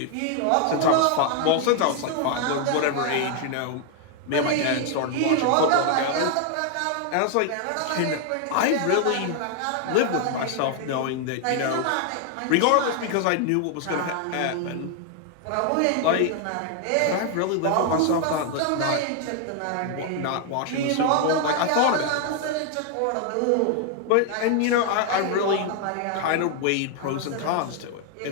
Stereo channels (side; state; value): both; different; correlation 0.00